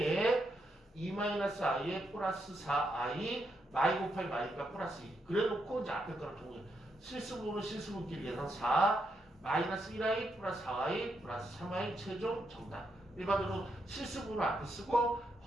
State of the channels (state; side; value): normal; both; correlation 0.81